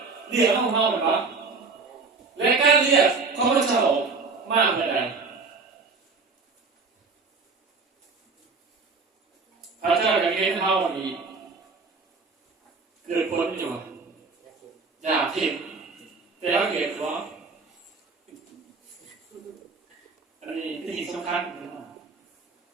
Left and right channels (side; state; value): left; quieter; 4.3 dB